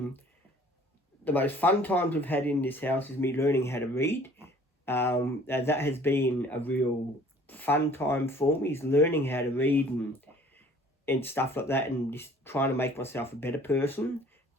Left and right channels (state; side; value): normal; both; correlation 0.53